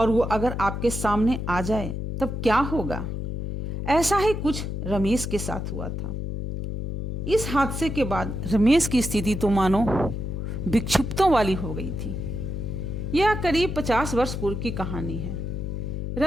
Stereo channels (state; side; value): noise; left; hum, 4 dB below the sound